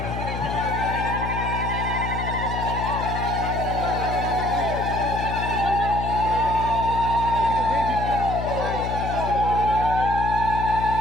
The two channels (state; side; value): noise; left; hum, 4 dB below the sound